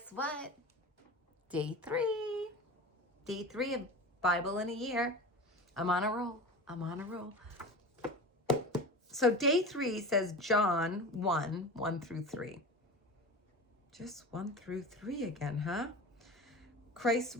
what? Day 3. Day 3 of Bible in a year. I'm on a roll. I'm on a roll. So day 3 says John 1, 1 through 3. Just 1 through 3 again, huh? Christ's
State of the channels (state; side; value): normal; both; correlation 0.31